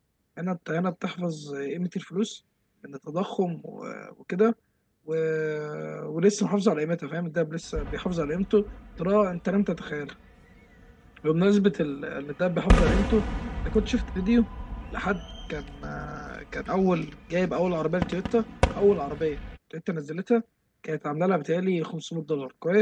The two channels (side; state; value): both; identical; correlation 1.00